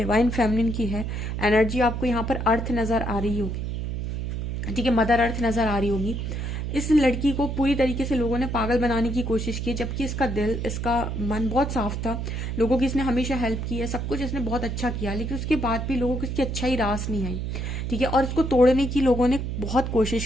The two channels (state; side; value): noise; right; hum, 3 dB below the sound